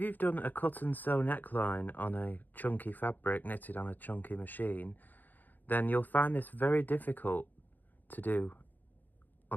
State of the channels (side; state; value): right; late; 0.086 ms